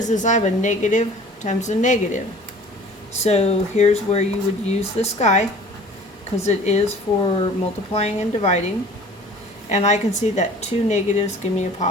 I have a negative times a negative. So here's where you would use this guy, because it is for multiplying and dividing. And I can see that 2 negatives give me a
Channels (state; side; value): normal; both; correlation 0.47